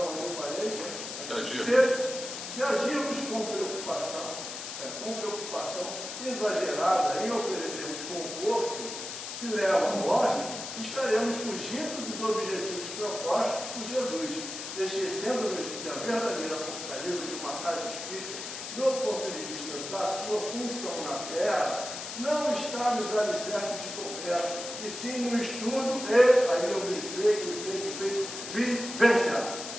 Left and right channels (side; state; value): left; noise; hiss, 8 dB below the sound